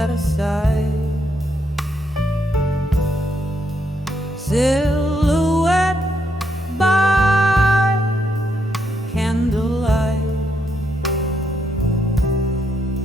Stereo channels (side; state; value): both; normal; correlation 0.77